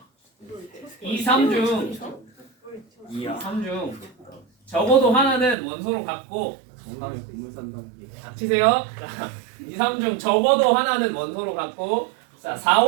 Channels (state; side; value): drops out; left; at 5.6 s